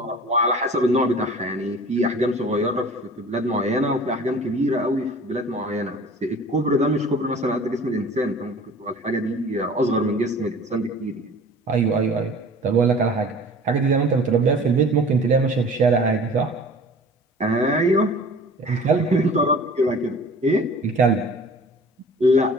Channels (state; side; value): normal; both; correlation 0.44